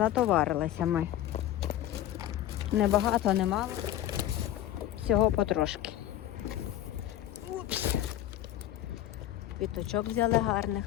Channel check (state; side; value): quieter; right; 12.6 dB